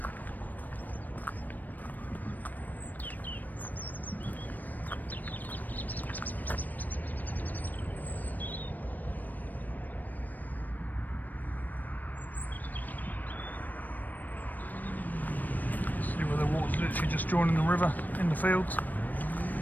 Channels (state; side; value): late; right; 0.085 ms